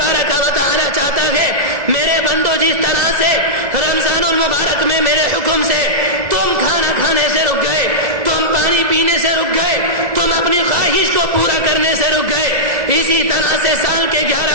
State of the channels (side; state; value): left; late; 1.7 ms